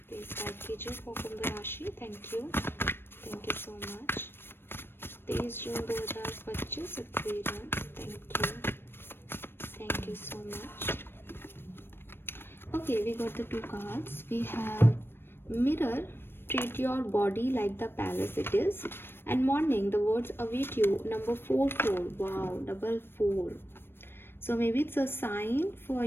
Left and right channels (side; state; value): right; late; 0.10 ms